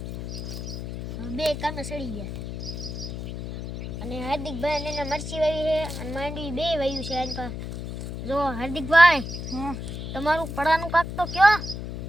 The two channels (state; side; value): noise; left; hum, 7 dB below the sound